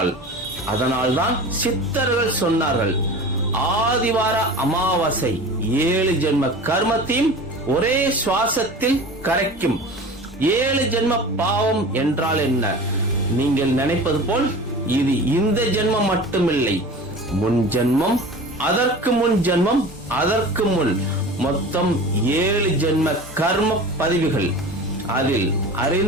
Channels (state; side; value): normal; both; correlation 0.36